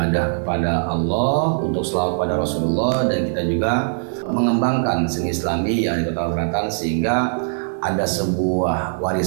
kepada Allah untuk selawat pada Rasulullah, dan kita juga mengembangkan seni Islami yang di Kota Selatan sehingga ada sebuah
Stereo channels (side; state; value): left; silent; 65 dB below the other